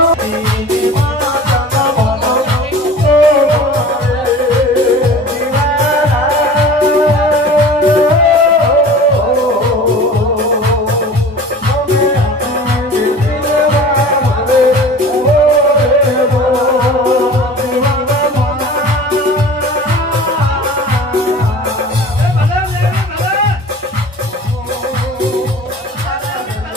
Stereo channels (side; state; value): both; normal; correlation 0.41